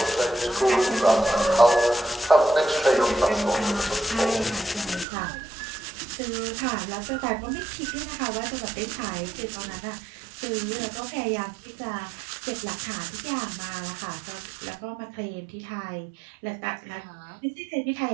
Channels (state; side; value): drops out; left; at 5.1 s